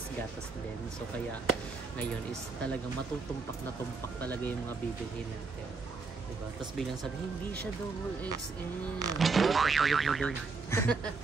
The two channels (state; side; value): quieter; left; 4.4 dB